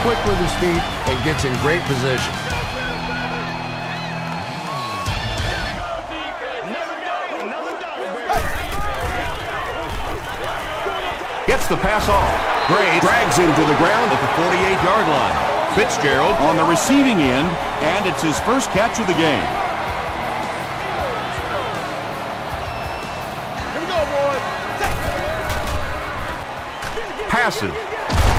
quick with his feet and gets in great position. Gets the pass off. Gray drags him to the ground at the 48-yard line. Fitzgerald on the receiving end, and it's his first catch of the game. Here we go, boys. Passes.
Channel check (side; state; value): both; identical; correlation 1.00